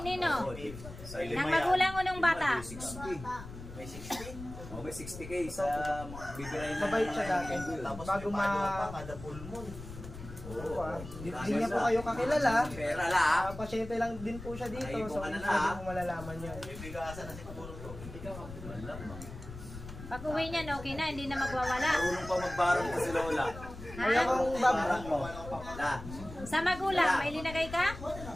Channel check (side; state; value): left; noise; rumble, 12 dB below the sound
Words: nino? Sa Ng magulang o ng bata? 60. May 60? Oh, may may 60K sa bibirayin ng Mabait siya dati. Tapos Bago may paano ma- pa kada full moon. Oo, Hindi niya po kayo kakilala. Pera la. Pasyente lang din po siya dito. Ay, So, kung ano hindi na, mo malalaman yun. May bigasan na siguro to. Pag uwi niyan, okay na, hindi na magwawala. Marunong pa magbarang ko si Lola. Kaya Ha? kung Barang mo. La. Sa magulang, may linagay ka?